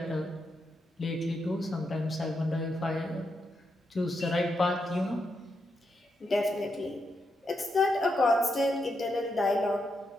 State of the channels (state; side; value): normal; both; correlation 0.83